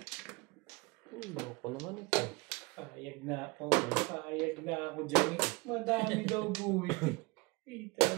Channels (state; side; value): quieter; left; 25.3 dB